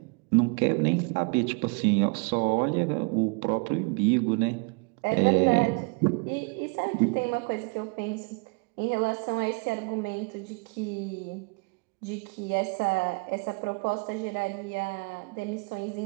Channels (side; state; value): left; quieter; 31.9 dB